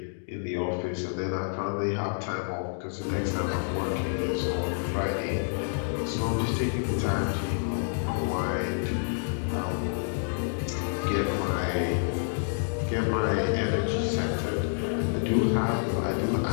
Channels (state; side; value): silent; right; digital silence